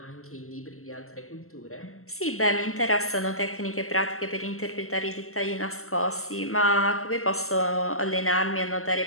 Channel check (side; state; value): right; late; 0.63 ms